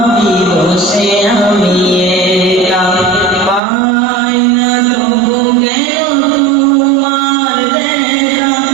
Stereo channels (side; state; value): left; drops out; at 3.6 s